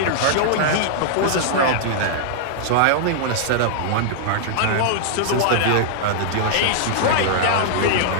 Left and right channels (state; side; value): different; both; correlation -0.01